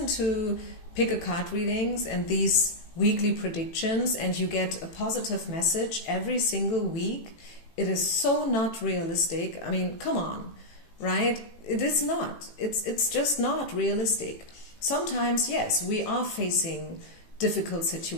to pick a card readings and these weekly predictions and you get a positive message every single week, it is so not realistic. I mean, come on, right? It is not. It's just not realistic. Sometimes, yes, we are facing difficult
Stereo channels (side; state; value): right; late; 18 ms